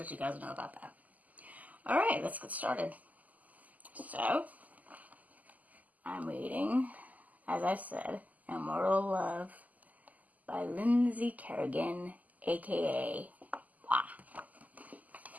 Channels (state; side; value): late; left; 0.078 ms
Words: you guys know about that. Alright, let's get started. So, I'm reading, as I said, Immortal Love by Lynnsey Carrigan, aka Wah.